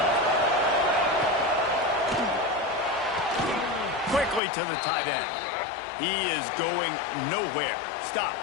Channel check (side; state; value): right; drops out; at 4.4 s